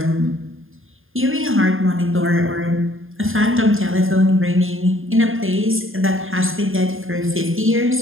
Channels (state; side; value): late; left; 0.59 ms